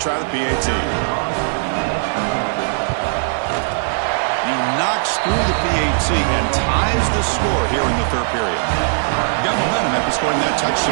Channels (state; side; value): silent; left; 67 dB below the other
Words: the PAT. He knocks through the PAT and ties the score here in the third period. Got momentum after scoring that